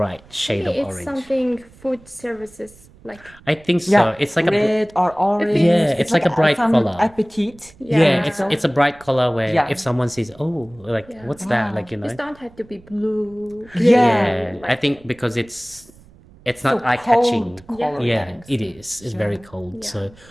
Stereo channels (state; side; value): noise; right; rumble, 25 dB below the sound